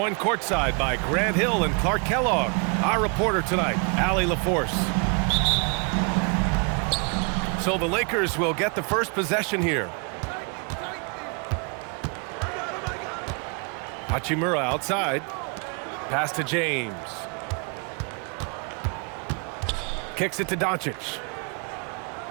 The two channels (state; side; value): quieter; left; 35.8 dB